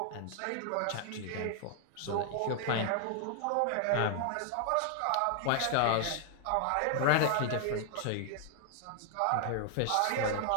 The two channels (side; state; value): both; different; correlation 0.00